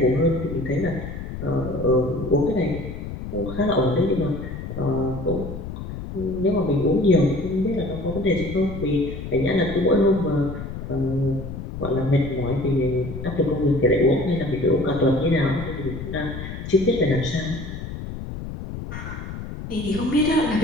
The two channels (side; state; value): left; noise; rumble, 8 dB below the sound